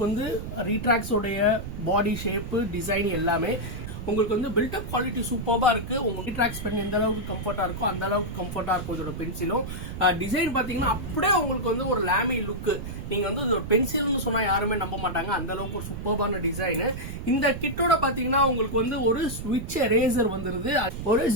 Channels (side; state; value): right; noise; rumble, 8 dB below the sound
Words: வந்து ரீட்ராக்ஸோடைய பாடி ஷேப்பு டிசைன் எல்லாமே உங்களுக்கு வந்து பில்டப் குவாலிட்டி சூப்பராக இருக்குது. உங்களுக்கு ரீட்ராக்ஸ் பென் எந்த அளவுக்கு கம்ஃபர்ட்டாக இருக்கோ அந்த அளவுக்கு கம்ஃபர்ட்டாக இருக்கும் இதோட பென்சிலும். டிசைன் பார்த்தீங்கன்னா அப்படியே உங்களுக்கு வந்து ஒரு லேமி லுக்கு. நீங்கள் வந்து இது ஒரு பென்சில்னு சொன்னால் யாருமே நம்ப மாட்டாங்க, அந்த அளவுக்கு ஒரு சூப்பரான டிசைனு. இந்த கிட்டோட பார்த்தீங்கன்னா உங்களுக்கு வந்து ஒரு ஸ்விட்ச் எரேசர் வந்துருது, ஒரு